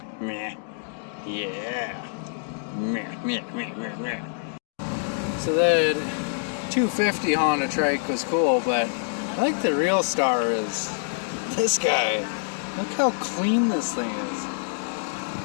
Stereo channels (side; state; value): right; silent; digital silence